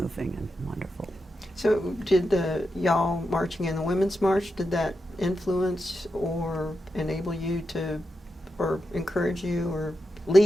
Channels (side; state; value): both; normal; correlation 0.88